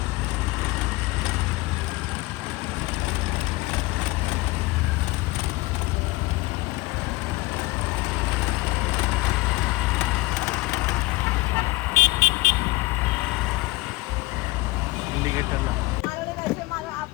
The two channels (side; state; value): right; quieter; 21.5 dB